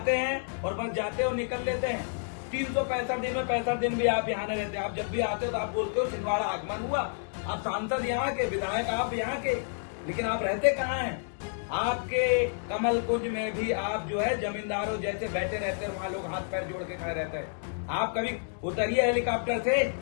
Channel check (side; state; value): right; silent; digital silence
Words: हैं और बस जाते और निकल लेते हैं। 365 दिन में 65 दिन भी आप यहाँ नहीं रहते। आप जब भी आते हो तो आप बोलते हो छिंदवाड़ा आगमन हुआ। आप सांसद यहाँ के, विधायक आप यहाँ के, लेकिन आप रहते कहाँ हैं? आपके कमल कुंज में भी आप जो है जमींदारों जैसे बैठे रहते हैं, वहां लोग हाथ पैर जोड़ के खड़े रहते हैं। आप कभी उतरिए हेलीकॉप्टर से,